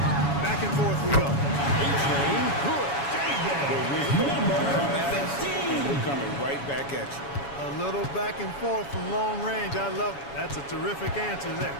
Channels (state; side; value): late; right; 7.1 ms